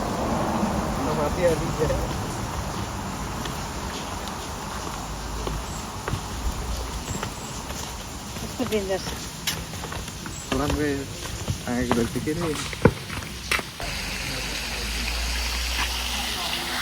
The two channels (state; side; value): identical; both; correlation 1.00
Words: कस्तो डेन्जर छ। राम्रै आएको रहेछ के अरे।